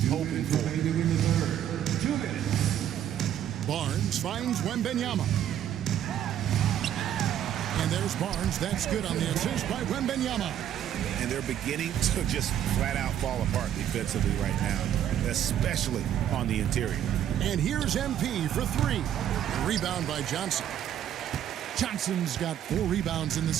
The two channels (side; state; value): left; quieter; 10.6 dB